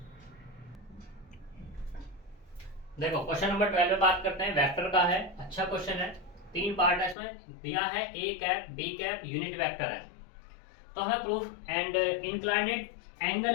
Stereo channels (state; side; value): drops out; right; at 7.2 s